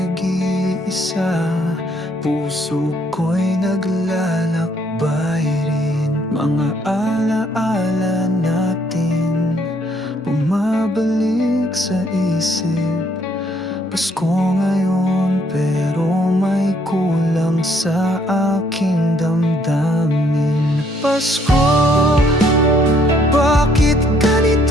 puso ko'y naglalakbay rin. Mga alaala natin bumabalik sa isip. Pasko ngayon pero may kulang sa aking damdamin. Pasko, bakit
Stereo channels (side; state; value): both; normal; correlation 0.67